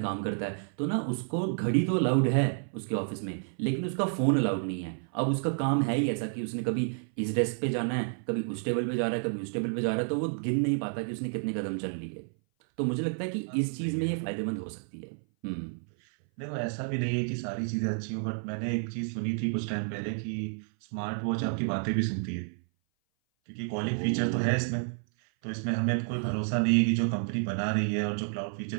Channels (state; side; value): silent; left; 57 dB below the other